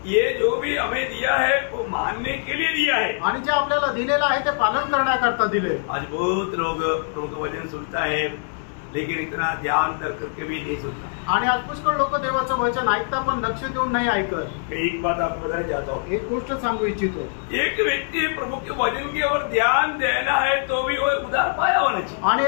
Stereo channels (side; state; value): right; silent; digital silence